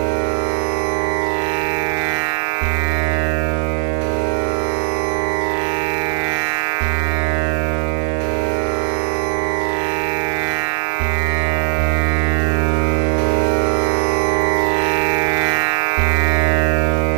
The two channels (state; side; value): silent; left; digital silence